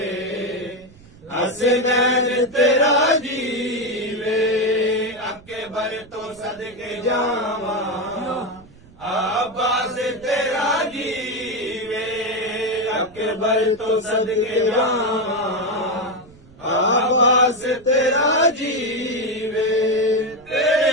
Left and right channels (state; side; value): noise; right; rumble, 24 dB below the sound